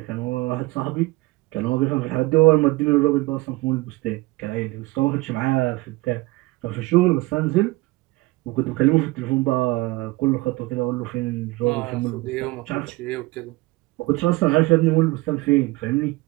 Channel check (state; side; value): quieter; left; 21.3 dB